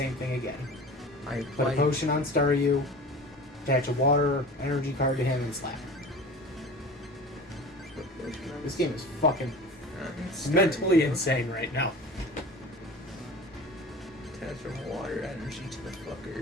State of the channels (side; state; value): both; normal; correlation 0.37